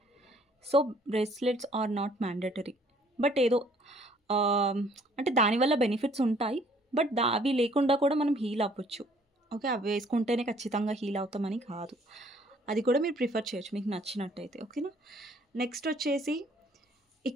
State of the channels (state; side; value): normal; both; correlation 0.60